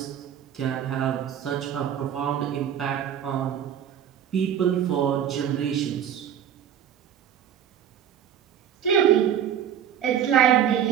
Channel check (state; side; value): quieter; left; 9.5 dB